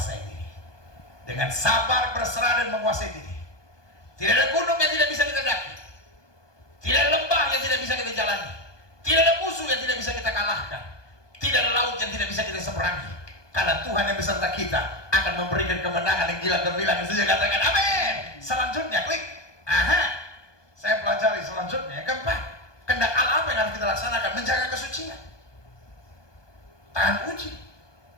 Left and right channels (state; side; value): late; right; 1.2 ms